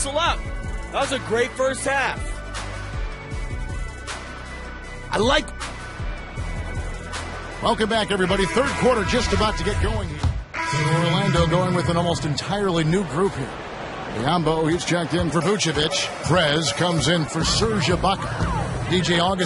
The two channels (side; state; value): both; identical; correlation 1.00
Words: up. That was a great first half. I like. Welcome back, everybody. Third quarter just about to get going here. Orlando going with an almost entirely new group here. Biyombo, he's checked in for Vucevic. Prez comes in for Serge Ibaka. DJ